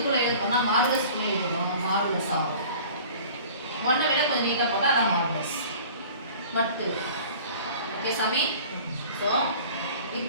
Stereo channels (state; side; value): inverted; both; correlation -0.45